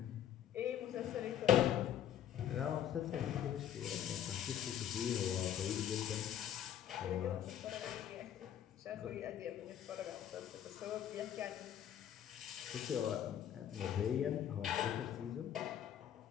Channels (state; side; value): quieter; right; 10.2 dB